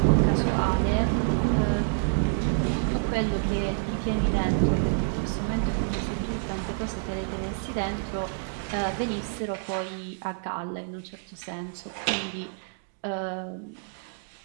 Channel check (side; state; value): left; silent; digital silence